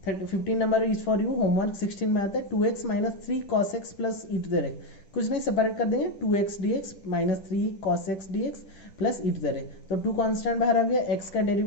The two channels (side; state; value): right; late; 10 ms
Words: 15 number is for you homework. 16 में आता है 2x minus 3 cos x plus e to the x, कुछ नहीं सेपरेट कर देंगे, 2x dx minus 3 cos x dx plus e to the x। तो 2 कांस्टेंट बाहर आ गया, x का